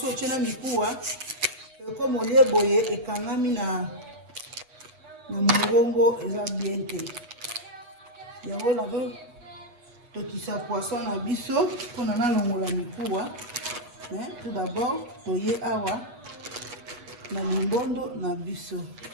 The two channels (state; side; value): late; left; 8.2 ms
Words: otia na mikuwa comme olie boye ekangami na mongongo eza bien te. Yango na tokisa poisson na biso pona na longola mikuwa. Tout d'abord toye awa na limbondo na biso.